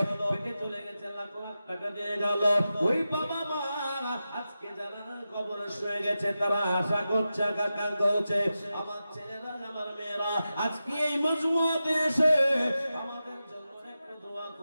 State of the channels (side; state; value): both; inverted; correlation -0.92